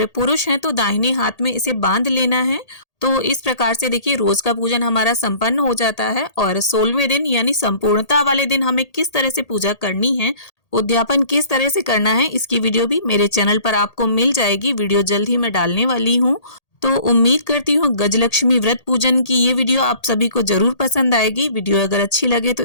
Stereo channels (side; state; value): right; late; 1.8 ms